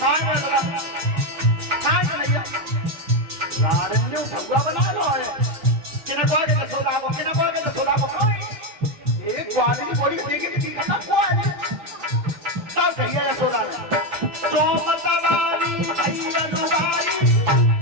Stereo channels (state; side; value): late; left; 6.0 ms